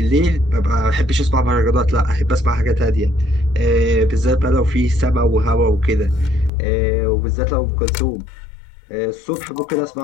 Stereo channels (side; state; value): right; drops out; at 6.5 s